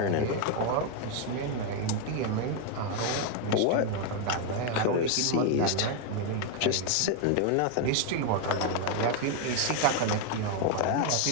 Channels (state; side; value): different; both; correlation 0.01